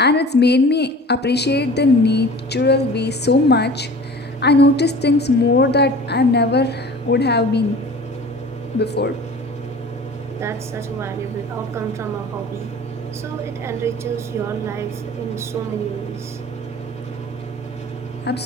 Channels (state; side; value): normal; both; correlation 0.42